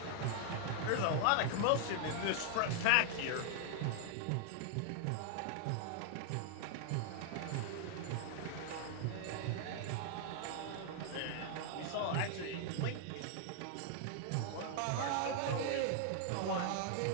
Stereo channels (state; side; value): different; both; correlation 0.00